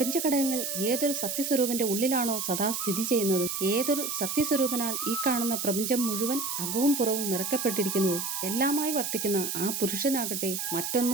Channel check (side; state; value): right; noise; hiss, 3 dB below the sound